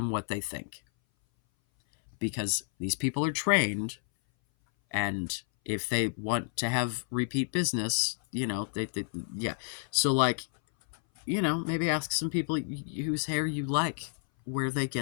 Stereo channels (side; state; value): right; silent; 57 dB below the other